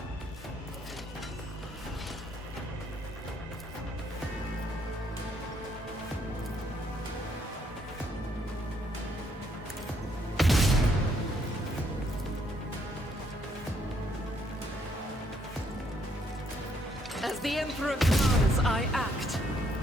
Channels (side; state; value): both; normal; correlation 0.71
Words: As the Emperor commands, I act.